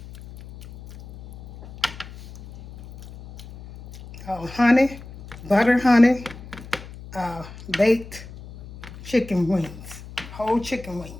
Honey, butter honey, baked chicken wings, whole chicken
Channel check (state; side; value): noise; left; hum, 16 dB below the sound